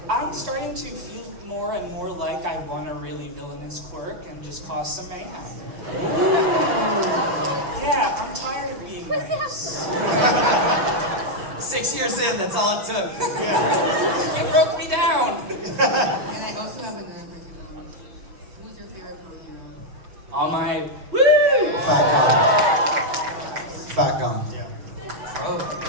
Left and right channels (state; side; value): late; left; 5.9 ms